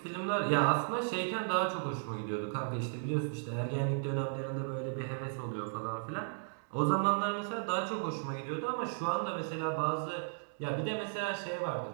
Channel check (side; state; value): left; silent; digital silence